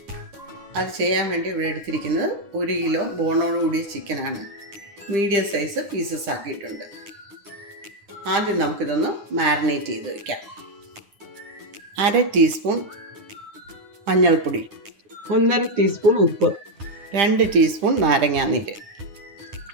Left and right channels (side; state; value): left; late; 10 ms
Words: അത് ചെയ്യാൻ വേണ്ടി ഇവിടെ എടുത്തിരിക്കുന്നത് 1 കിലോ ബോണോട് കൂടിയ ചിക്കനാണ്. മീഡിയം സൈസ് പീസസ് ആക്കിയിട്ടുണ്ട്. ആദ്യം നമുക്കിതൊന്ന് മാരിനേറ്റ് ചെയ്ത് വയ്ക്കാം. 1/2 ടീസ്പൂൺ മഞ്ഞൾപ്പൊടി, 1/2 ടീസ്പൂൺ ഉപ്പ്, 2 ടീസ്പൂൺ നാരങ്ങാനീര്.